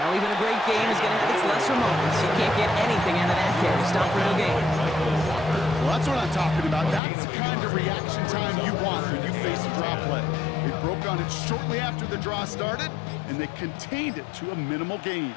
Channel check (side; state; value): right; drops out; at 7.0 s